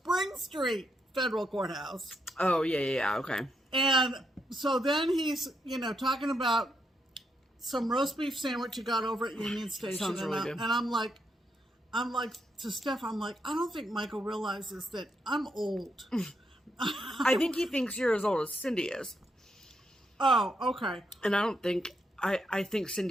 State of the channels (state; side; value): normal; both; correlation 0.80